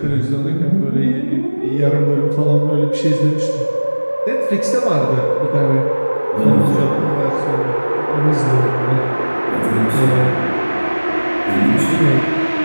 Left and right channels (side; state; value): both; inverted; correlation -1.00